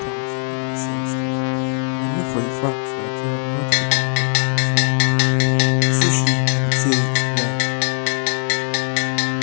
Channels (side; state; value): right; silent; 66 dB below the other